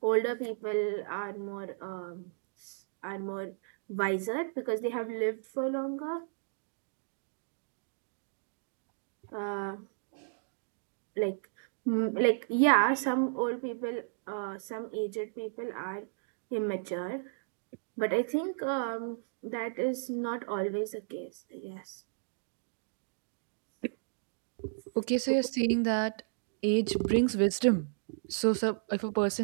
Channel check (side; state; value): left; silent; digital silence